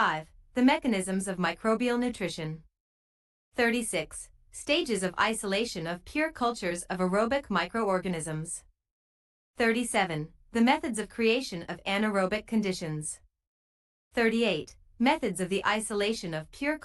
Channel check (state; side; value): identical; both; correlation 1.00